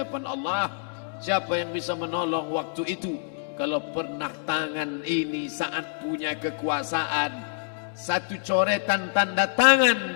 Allah. Siapa yang bisa menolong waktu itu? Kalau pernah tangan ini saat punya kekuasaan, 1 coretan tanda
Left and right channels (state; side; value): silent; right; 60 dB below the other